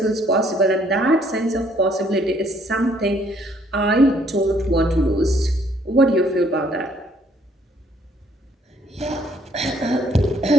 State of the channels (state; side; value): normal; both; correlation 0.65